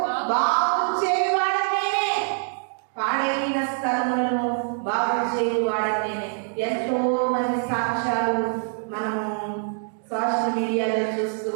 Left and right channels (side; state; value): left; silent; 62 dB below the other